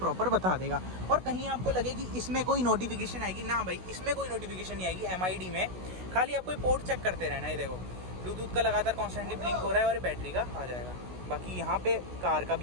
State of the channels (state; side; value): late; left; 16 ms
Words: बता देगा। और कहीं आपको लगे कि इसमें कोई नोटिफिकेशन आएगी ना, भाई इसमें कोई नोटिफिकेशन नहीं आएगी MID में, खाली आपको पोर्ट चेक करते रहना है। देखो ब्लूटूथ का लगातार कॉन्स्टेंटली ब्लिंक हो रहा है और बैटरी का आ जाएगा। बाकी यहाँ पे कार का